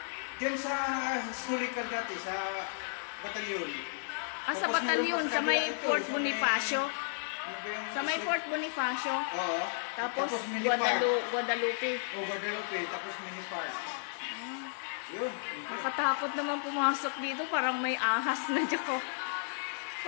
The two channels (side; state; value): right; silent; digital silence